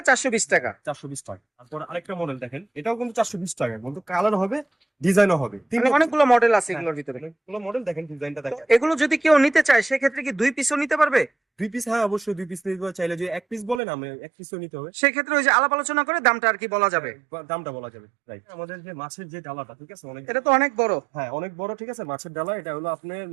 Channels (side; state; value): left; drops out; at 13.8 s